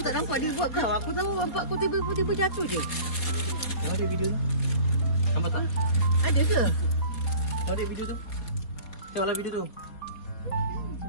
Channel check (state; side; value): late; right; 4.4 ms